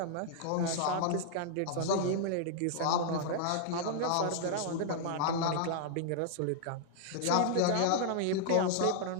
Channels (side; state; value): both; different; correlation -0.01